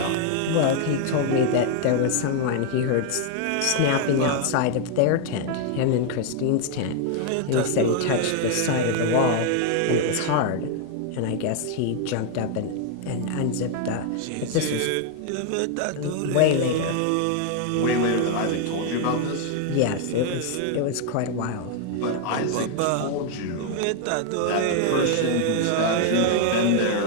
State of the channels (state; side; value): different; both; correlation 0.00